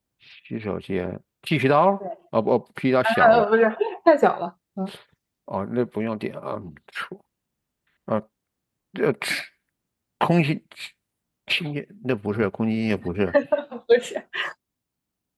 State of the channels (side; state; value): both; identical; correlation 1.00